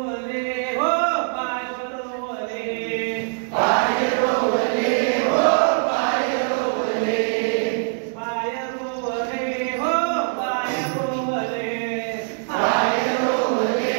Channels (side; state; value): left; silent; digital silence